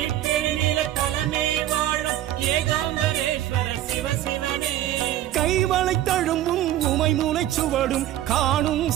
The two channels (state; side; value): quieter; left; 13.0 dB